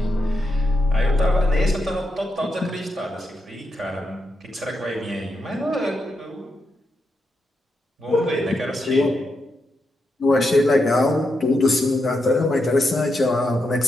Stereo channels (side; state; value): both; normal; correlation 0.84